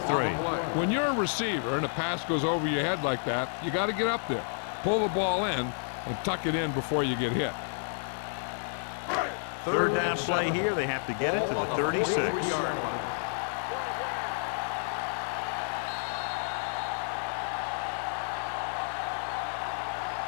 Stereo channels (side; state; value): right; silent; digital silence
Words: When you're a receiver and a pass goes over your head like that, you got to get up there, pull the ball in, and tuck it in before you get hit. 3rd down play here. They have to get it to the 36.